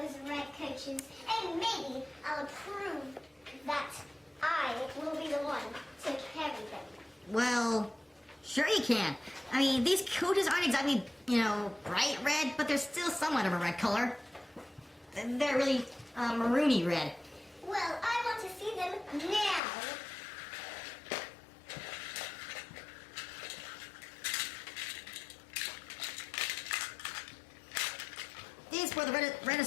red coaches? And maybe I'll prove that I will be the one to carry them. Well, sure you can. I mean, these coaches aren't exactly, bright red, but they're still somewhat of a red color. They're really maroony red. Well, I want to see them now. These were the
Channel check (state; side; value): drops out; right; at 19.6 s